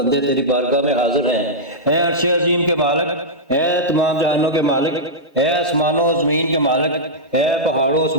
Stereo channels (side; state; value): both; normal; correlation -0.10